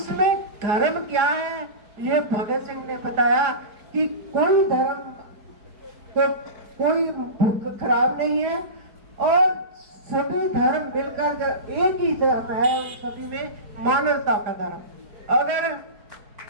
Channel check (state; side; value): late; left; 4.6 ms